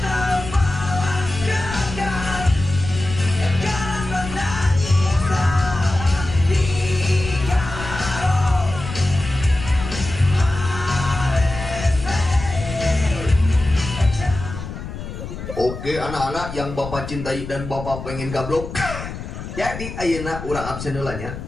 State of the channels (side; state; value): left; noise; rumble, 9 dB below the sound